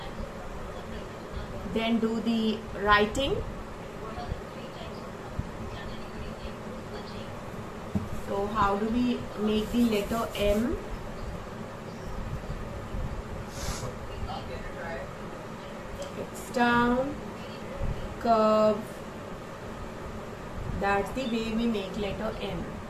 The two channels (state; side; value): identical; both; correlation 1.00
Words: Then do the writing. So how do we make the letter M? It's down, curve. That's the way we make letter M.